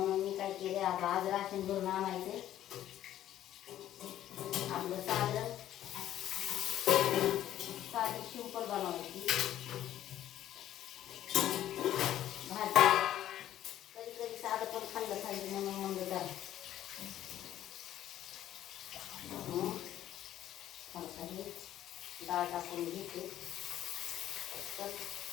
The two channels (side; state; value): right; quieter; 12.2 dB